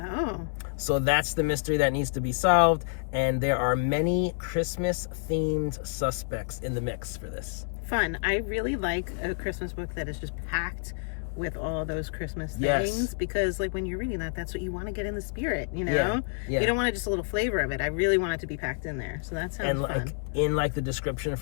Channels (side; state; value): right; silent; digital silence